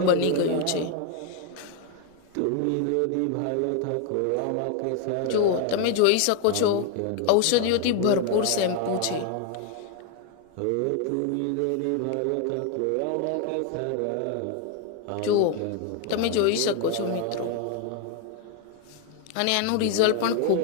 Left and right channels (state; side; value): different; both; correlation 0.01